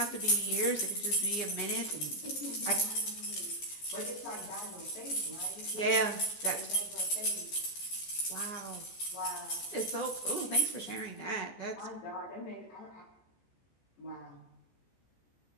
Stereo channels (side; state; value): right; late; 14 ms